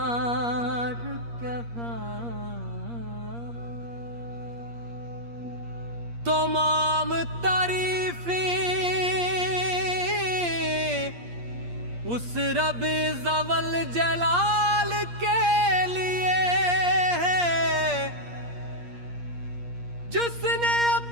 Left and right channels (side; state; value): left; late; 8.5 ms